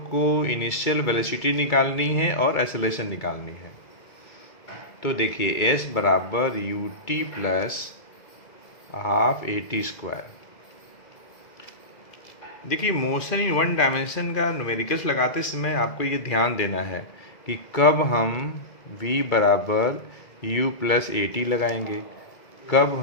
को इनिशियल वेलोसिटी निकालनी है और एक्सेलरेशन निकालनी है। तो देखिए s बराबर U T plus half AT²। देखिए मोशन इन 1 डायमेंशन का न्यूमेरिकल्स लगाते समय आपको ये ध्यान देना है कि कब हम v बराबर u प्लस AT लगाएंगे, कब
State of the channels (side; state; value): right; late; 2.0 ms